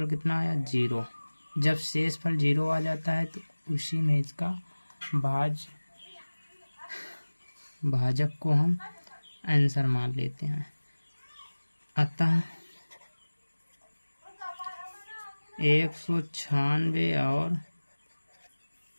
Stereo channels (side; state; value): both; inverted; correlation -1.00